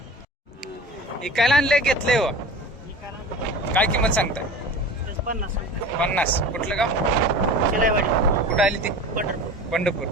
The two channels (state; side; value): normal; both; correlation 0.36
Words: इकायला आणले घेतले हो. काय किंमत सांगताय? 50. कुठलं गाव? कुठं आली ती? पंढरपूर.